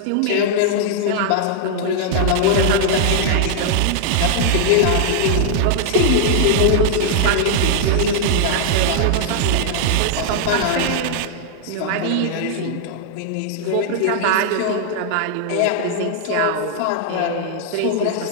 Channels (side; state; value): both; different; correlation -0.01